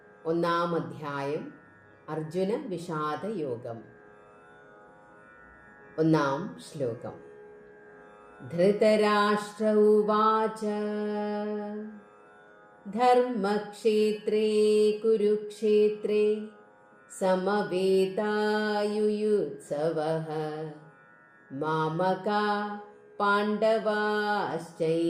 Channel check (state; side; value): identical; both; correlation 1.00